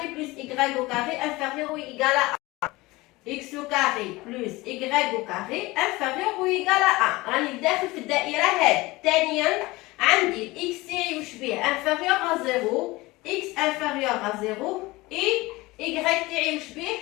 بلس ايغريك او كاري انفيريور او ايغال ا اكس او كاري بلس ايغريك او كاري انفيريور او ايغال ا. راني داخل في الدائره هذه. ثانيا عندي الاكس تاعي واش بيه انفيريور ا 0 اكس انفيريور ا 0 اي ايغريك تاعي واش بيه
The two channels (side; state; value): right; quieter; 21.1 dB